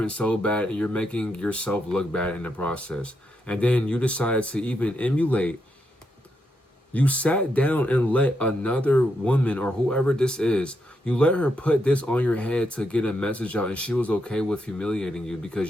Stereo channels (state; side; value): normal; both; correlation 0.81